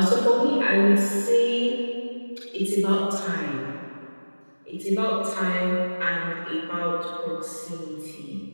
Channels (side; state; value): both; inverted; correlation -1.00